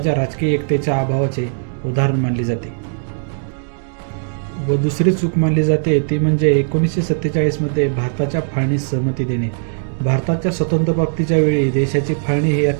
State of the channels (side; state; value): left; silent; digital silence